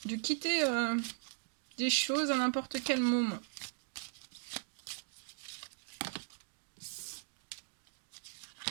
De quitter des choses à n'importe quel moment.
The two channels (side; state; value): left; silent; digital silence